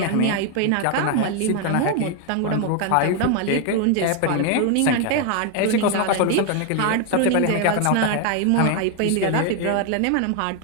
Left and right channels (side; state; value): both; different; correlation 0.01